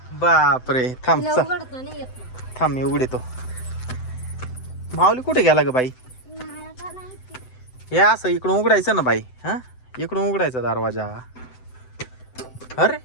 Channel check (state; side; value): late; right; 7.9 ms